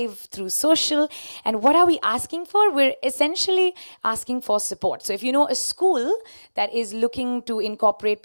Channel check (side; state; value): both; inverted; correlation -1.00